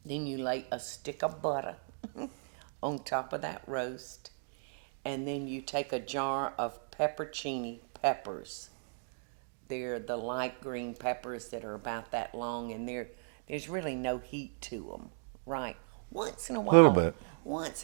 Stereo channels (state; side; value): silent; left; digital silence